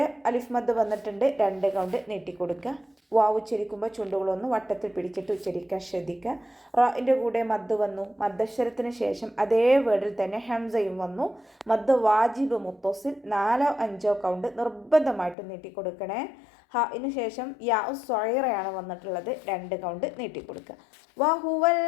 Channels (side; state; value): right; drops out; at 15.4 s